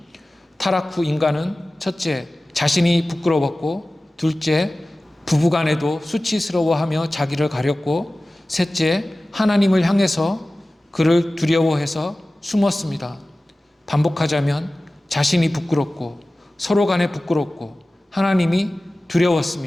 타락 후 인간은 첫째, 자신이 부끄러웠고 둘째, 부부간에도 수치스러워하며 자기를 가렸고 셋째, 하나님을 향해서 그를 두려워해서 숨었습니다. 반복하자면 자신이 부끄럽고 서로 간에 부끄럽고 하나님이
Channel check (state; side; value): normal; both; correlation 0.97